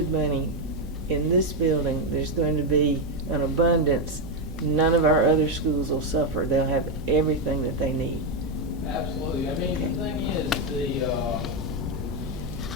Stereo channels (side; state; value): right; noise; hum, 12 dB below the sound